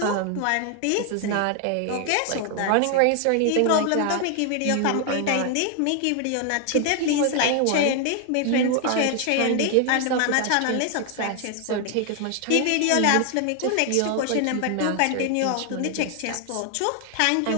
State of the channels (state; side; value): different; both; correlation 0.00